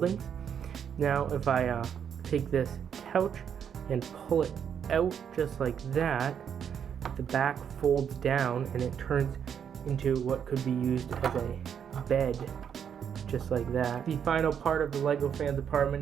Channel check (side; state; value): left; quieter; 8.1 dB